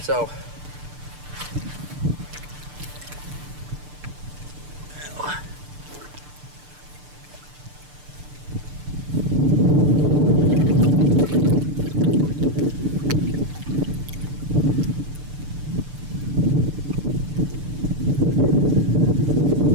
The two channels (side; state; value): left; late; 6.8 ms